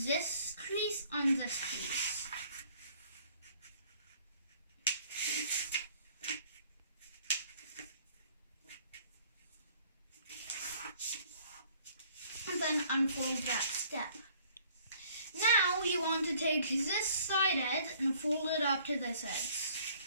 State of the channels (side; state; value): both; inverted; correlation -0.58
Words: crease on this crease. And then unfold that step. Now you want to take this side edge and fold it up to this edge.